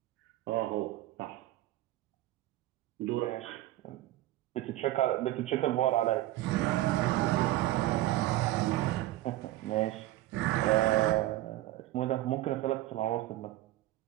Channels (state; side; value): quieter; left; 15.9 dB